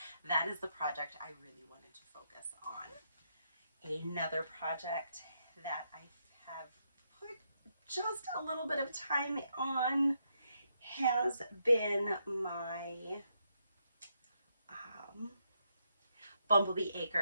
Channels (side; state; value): both; inverted; correlation -0.79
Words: that is the project I really wanted to focus on. Another project that I have put just a little bit of time on has been my Bumblebee